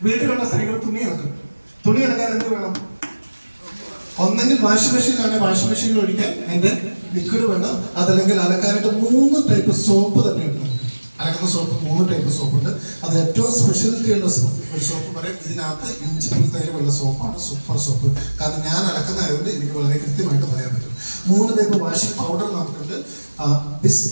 വീട്ടിലുള്ള സ്ത്രീകൾ തുണി ഇറക്കും. തുണി ഇറക്കാൻ എന്ത് വേണം? ഒന്നെങ്കിൽ വാഷിംഗ് മെഷീനിലാണെങ്കിൽ വാഷിംഗ് മെഷീനിൽ ഒഴിക്കാൻ അതിന്റെ ലിക്വിഡ് വേണം. അതല്ലെങ്കിൽ അലക്കാനായിട്ട് 3 ടൈപ്പ് സോപ്പ് തന്നെ ഉണ്ട് നമുക്ക്. അലക്കുന്ന സോപ്പ് 3 ടൈപ്പ് സോപ്പുണ്ട്. അത് ഏറ്റവും സ്പെഷ്യാലിറ്റി ഉള്ള ഒരു സോപ്പ് പറയും ഇതിനകത്ത് ഇഞ്ചിപ്പുൽത്തൈലമുള്ള സോപ്പാണ് സൂപ്പർ സോപ്പ്. കാരണം ഞാൻ അലക്കുന്നതായതുകൊണ്ട് എനിക്ക് വളരെ കൃത്യമായിട്ട് പറയാൻ പറ്റും. 3 ടൈപ്പ് വാഷിംഗ് പൗഡർ നമുക്കുണ്ട്. ബിസ്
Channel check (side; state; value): both; inverted; correlation -1.00